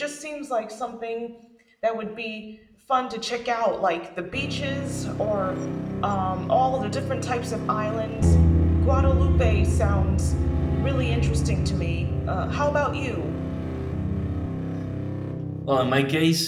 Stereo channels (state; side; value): identical; both; correlation 1.00